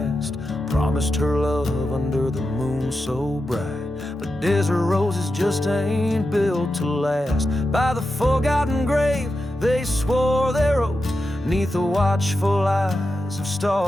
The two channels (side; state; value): both; normal; correlation 0.90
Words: Promised her love under the moon so bright, but desert roses just ain't built to last. By the forgotten grave they swore their oath, 'neath the watchful eyes of